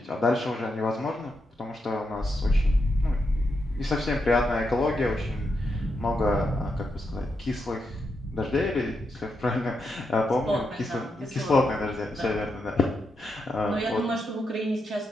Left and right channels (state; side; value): normal; both; correlation 0.84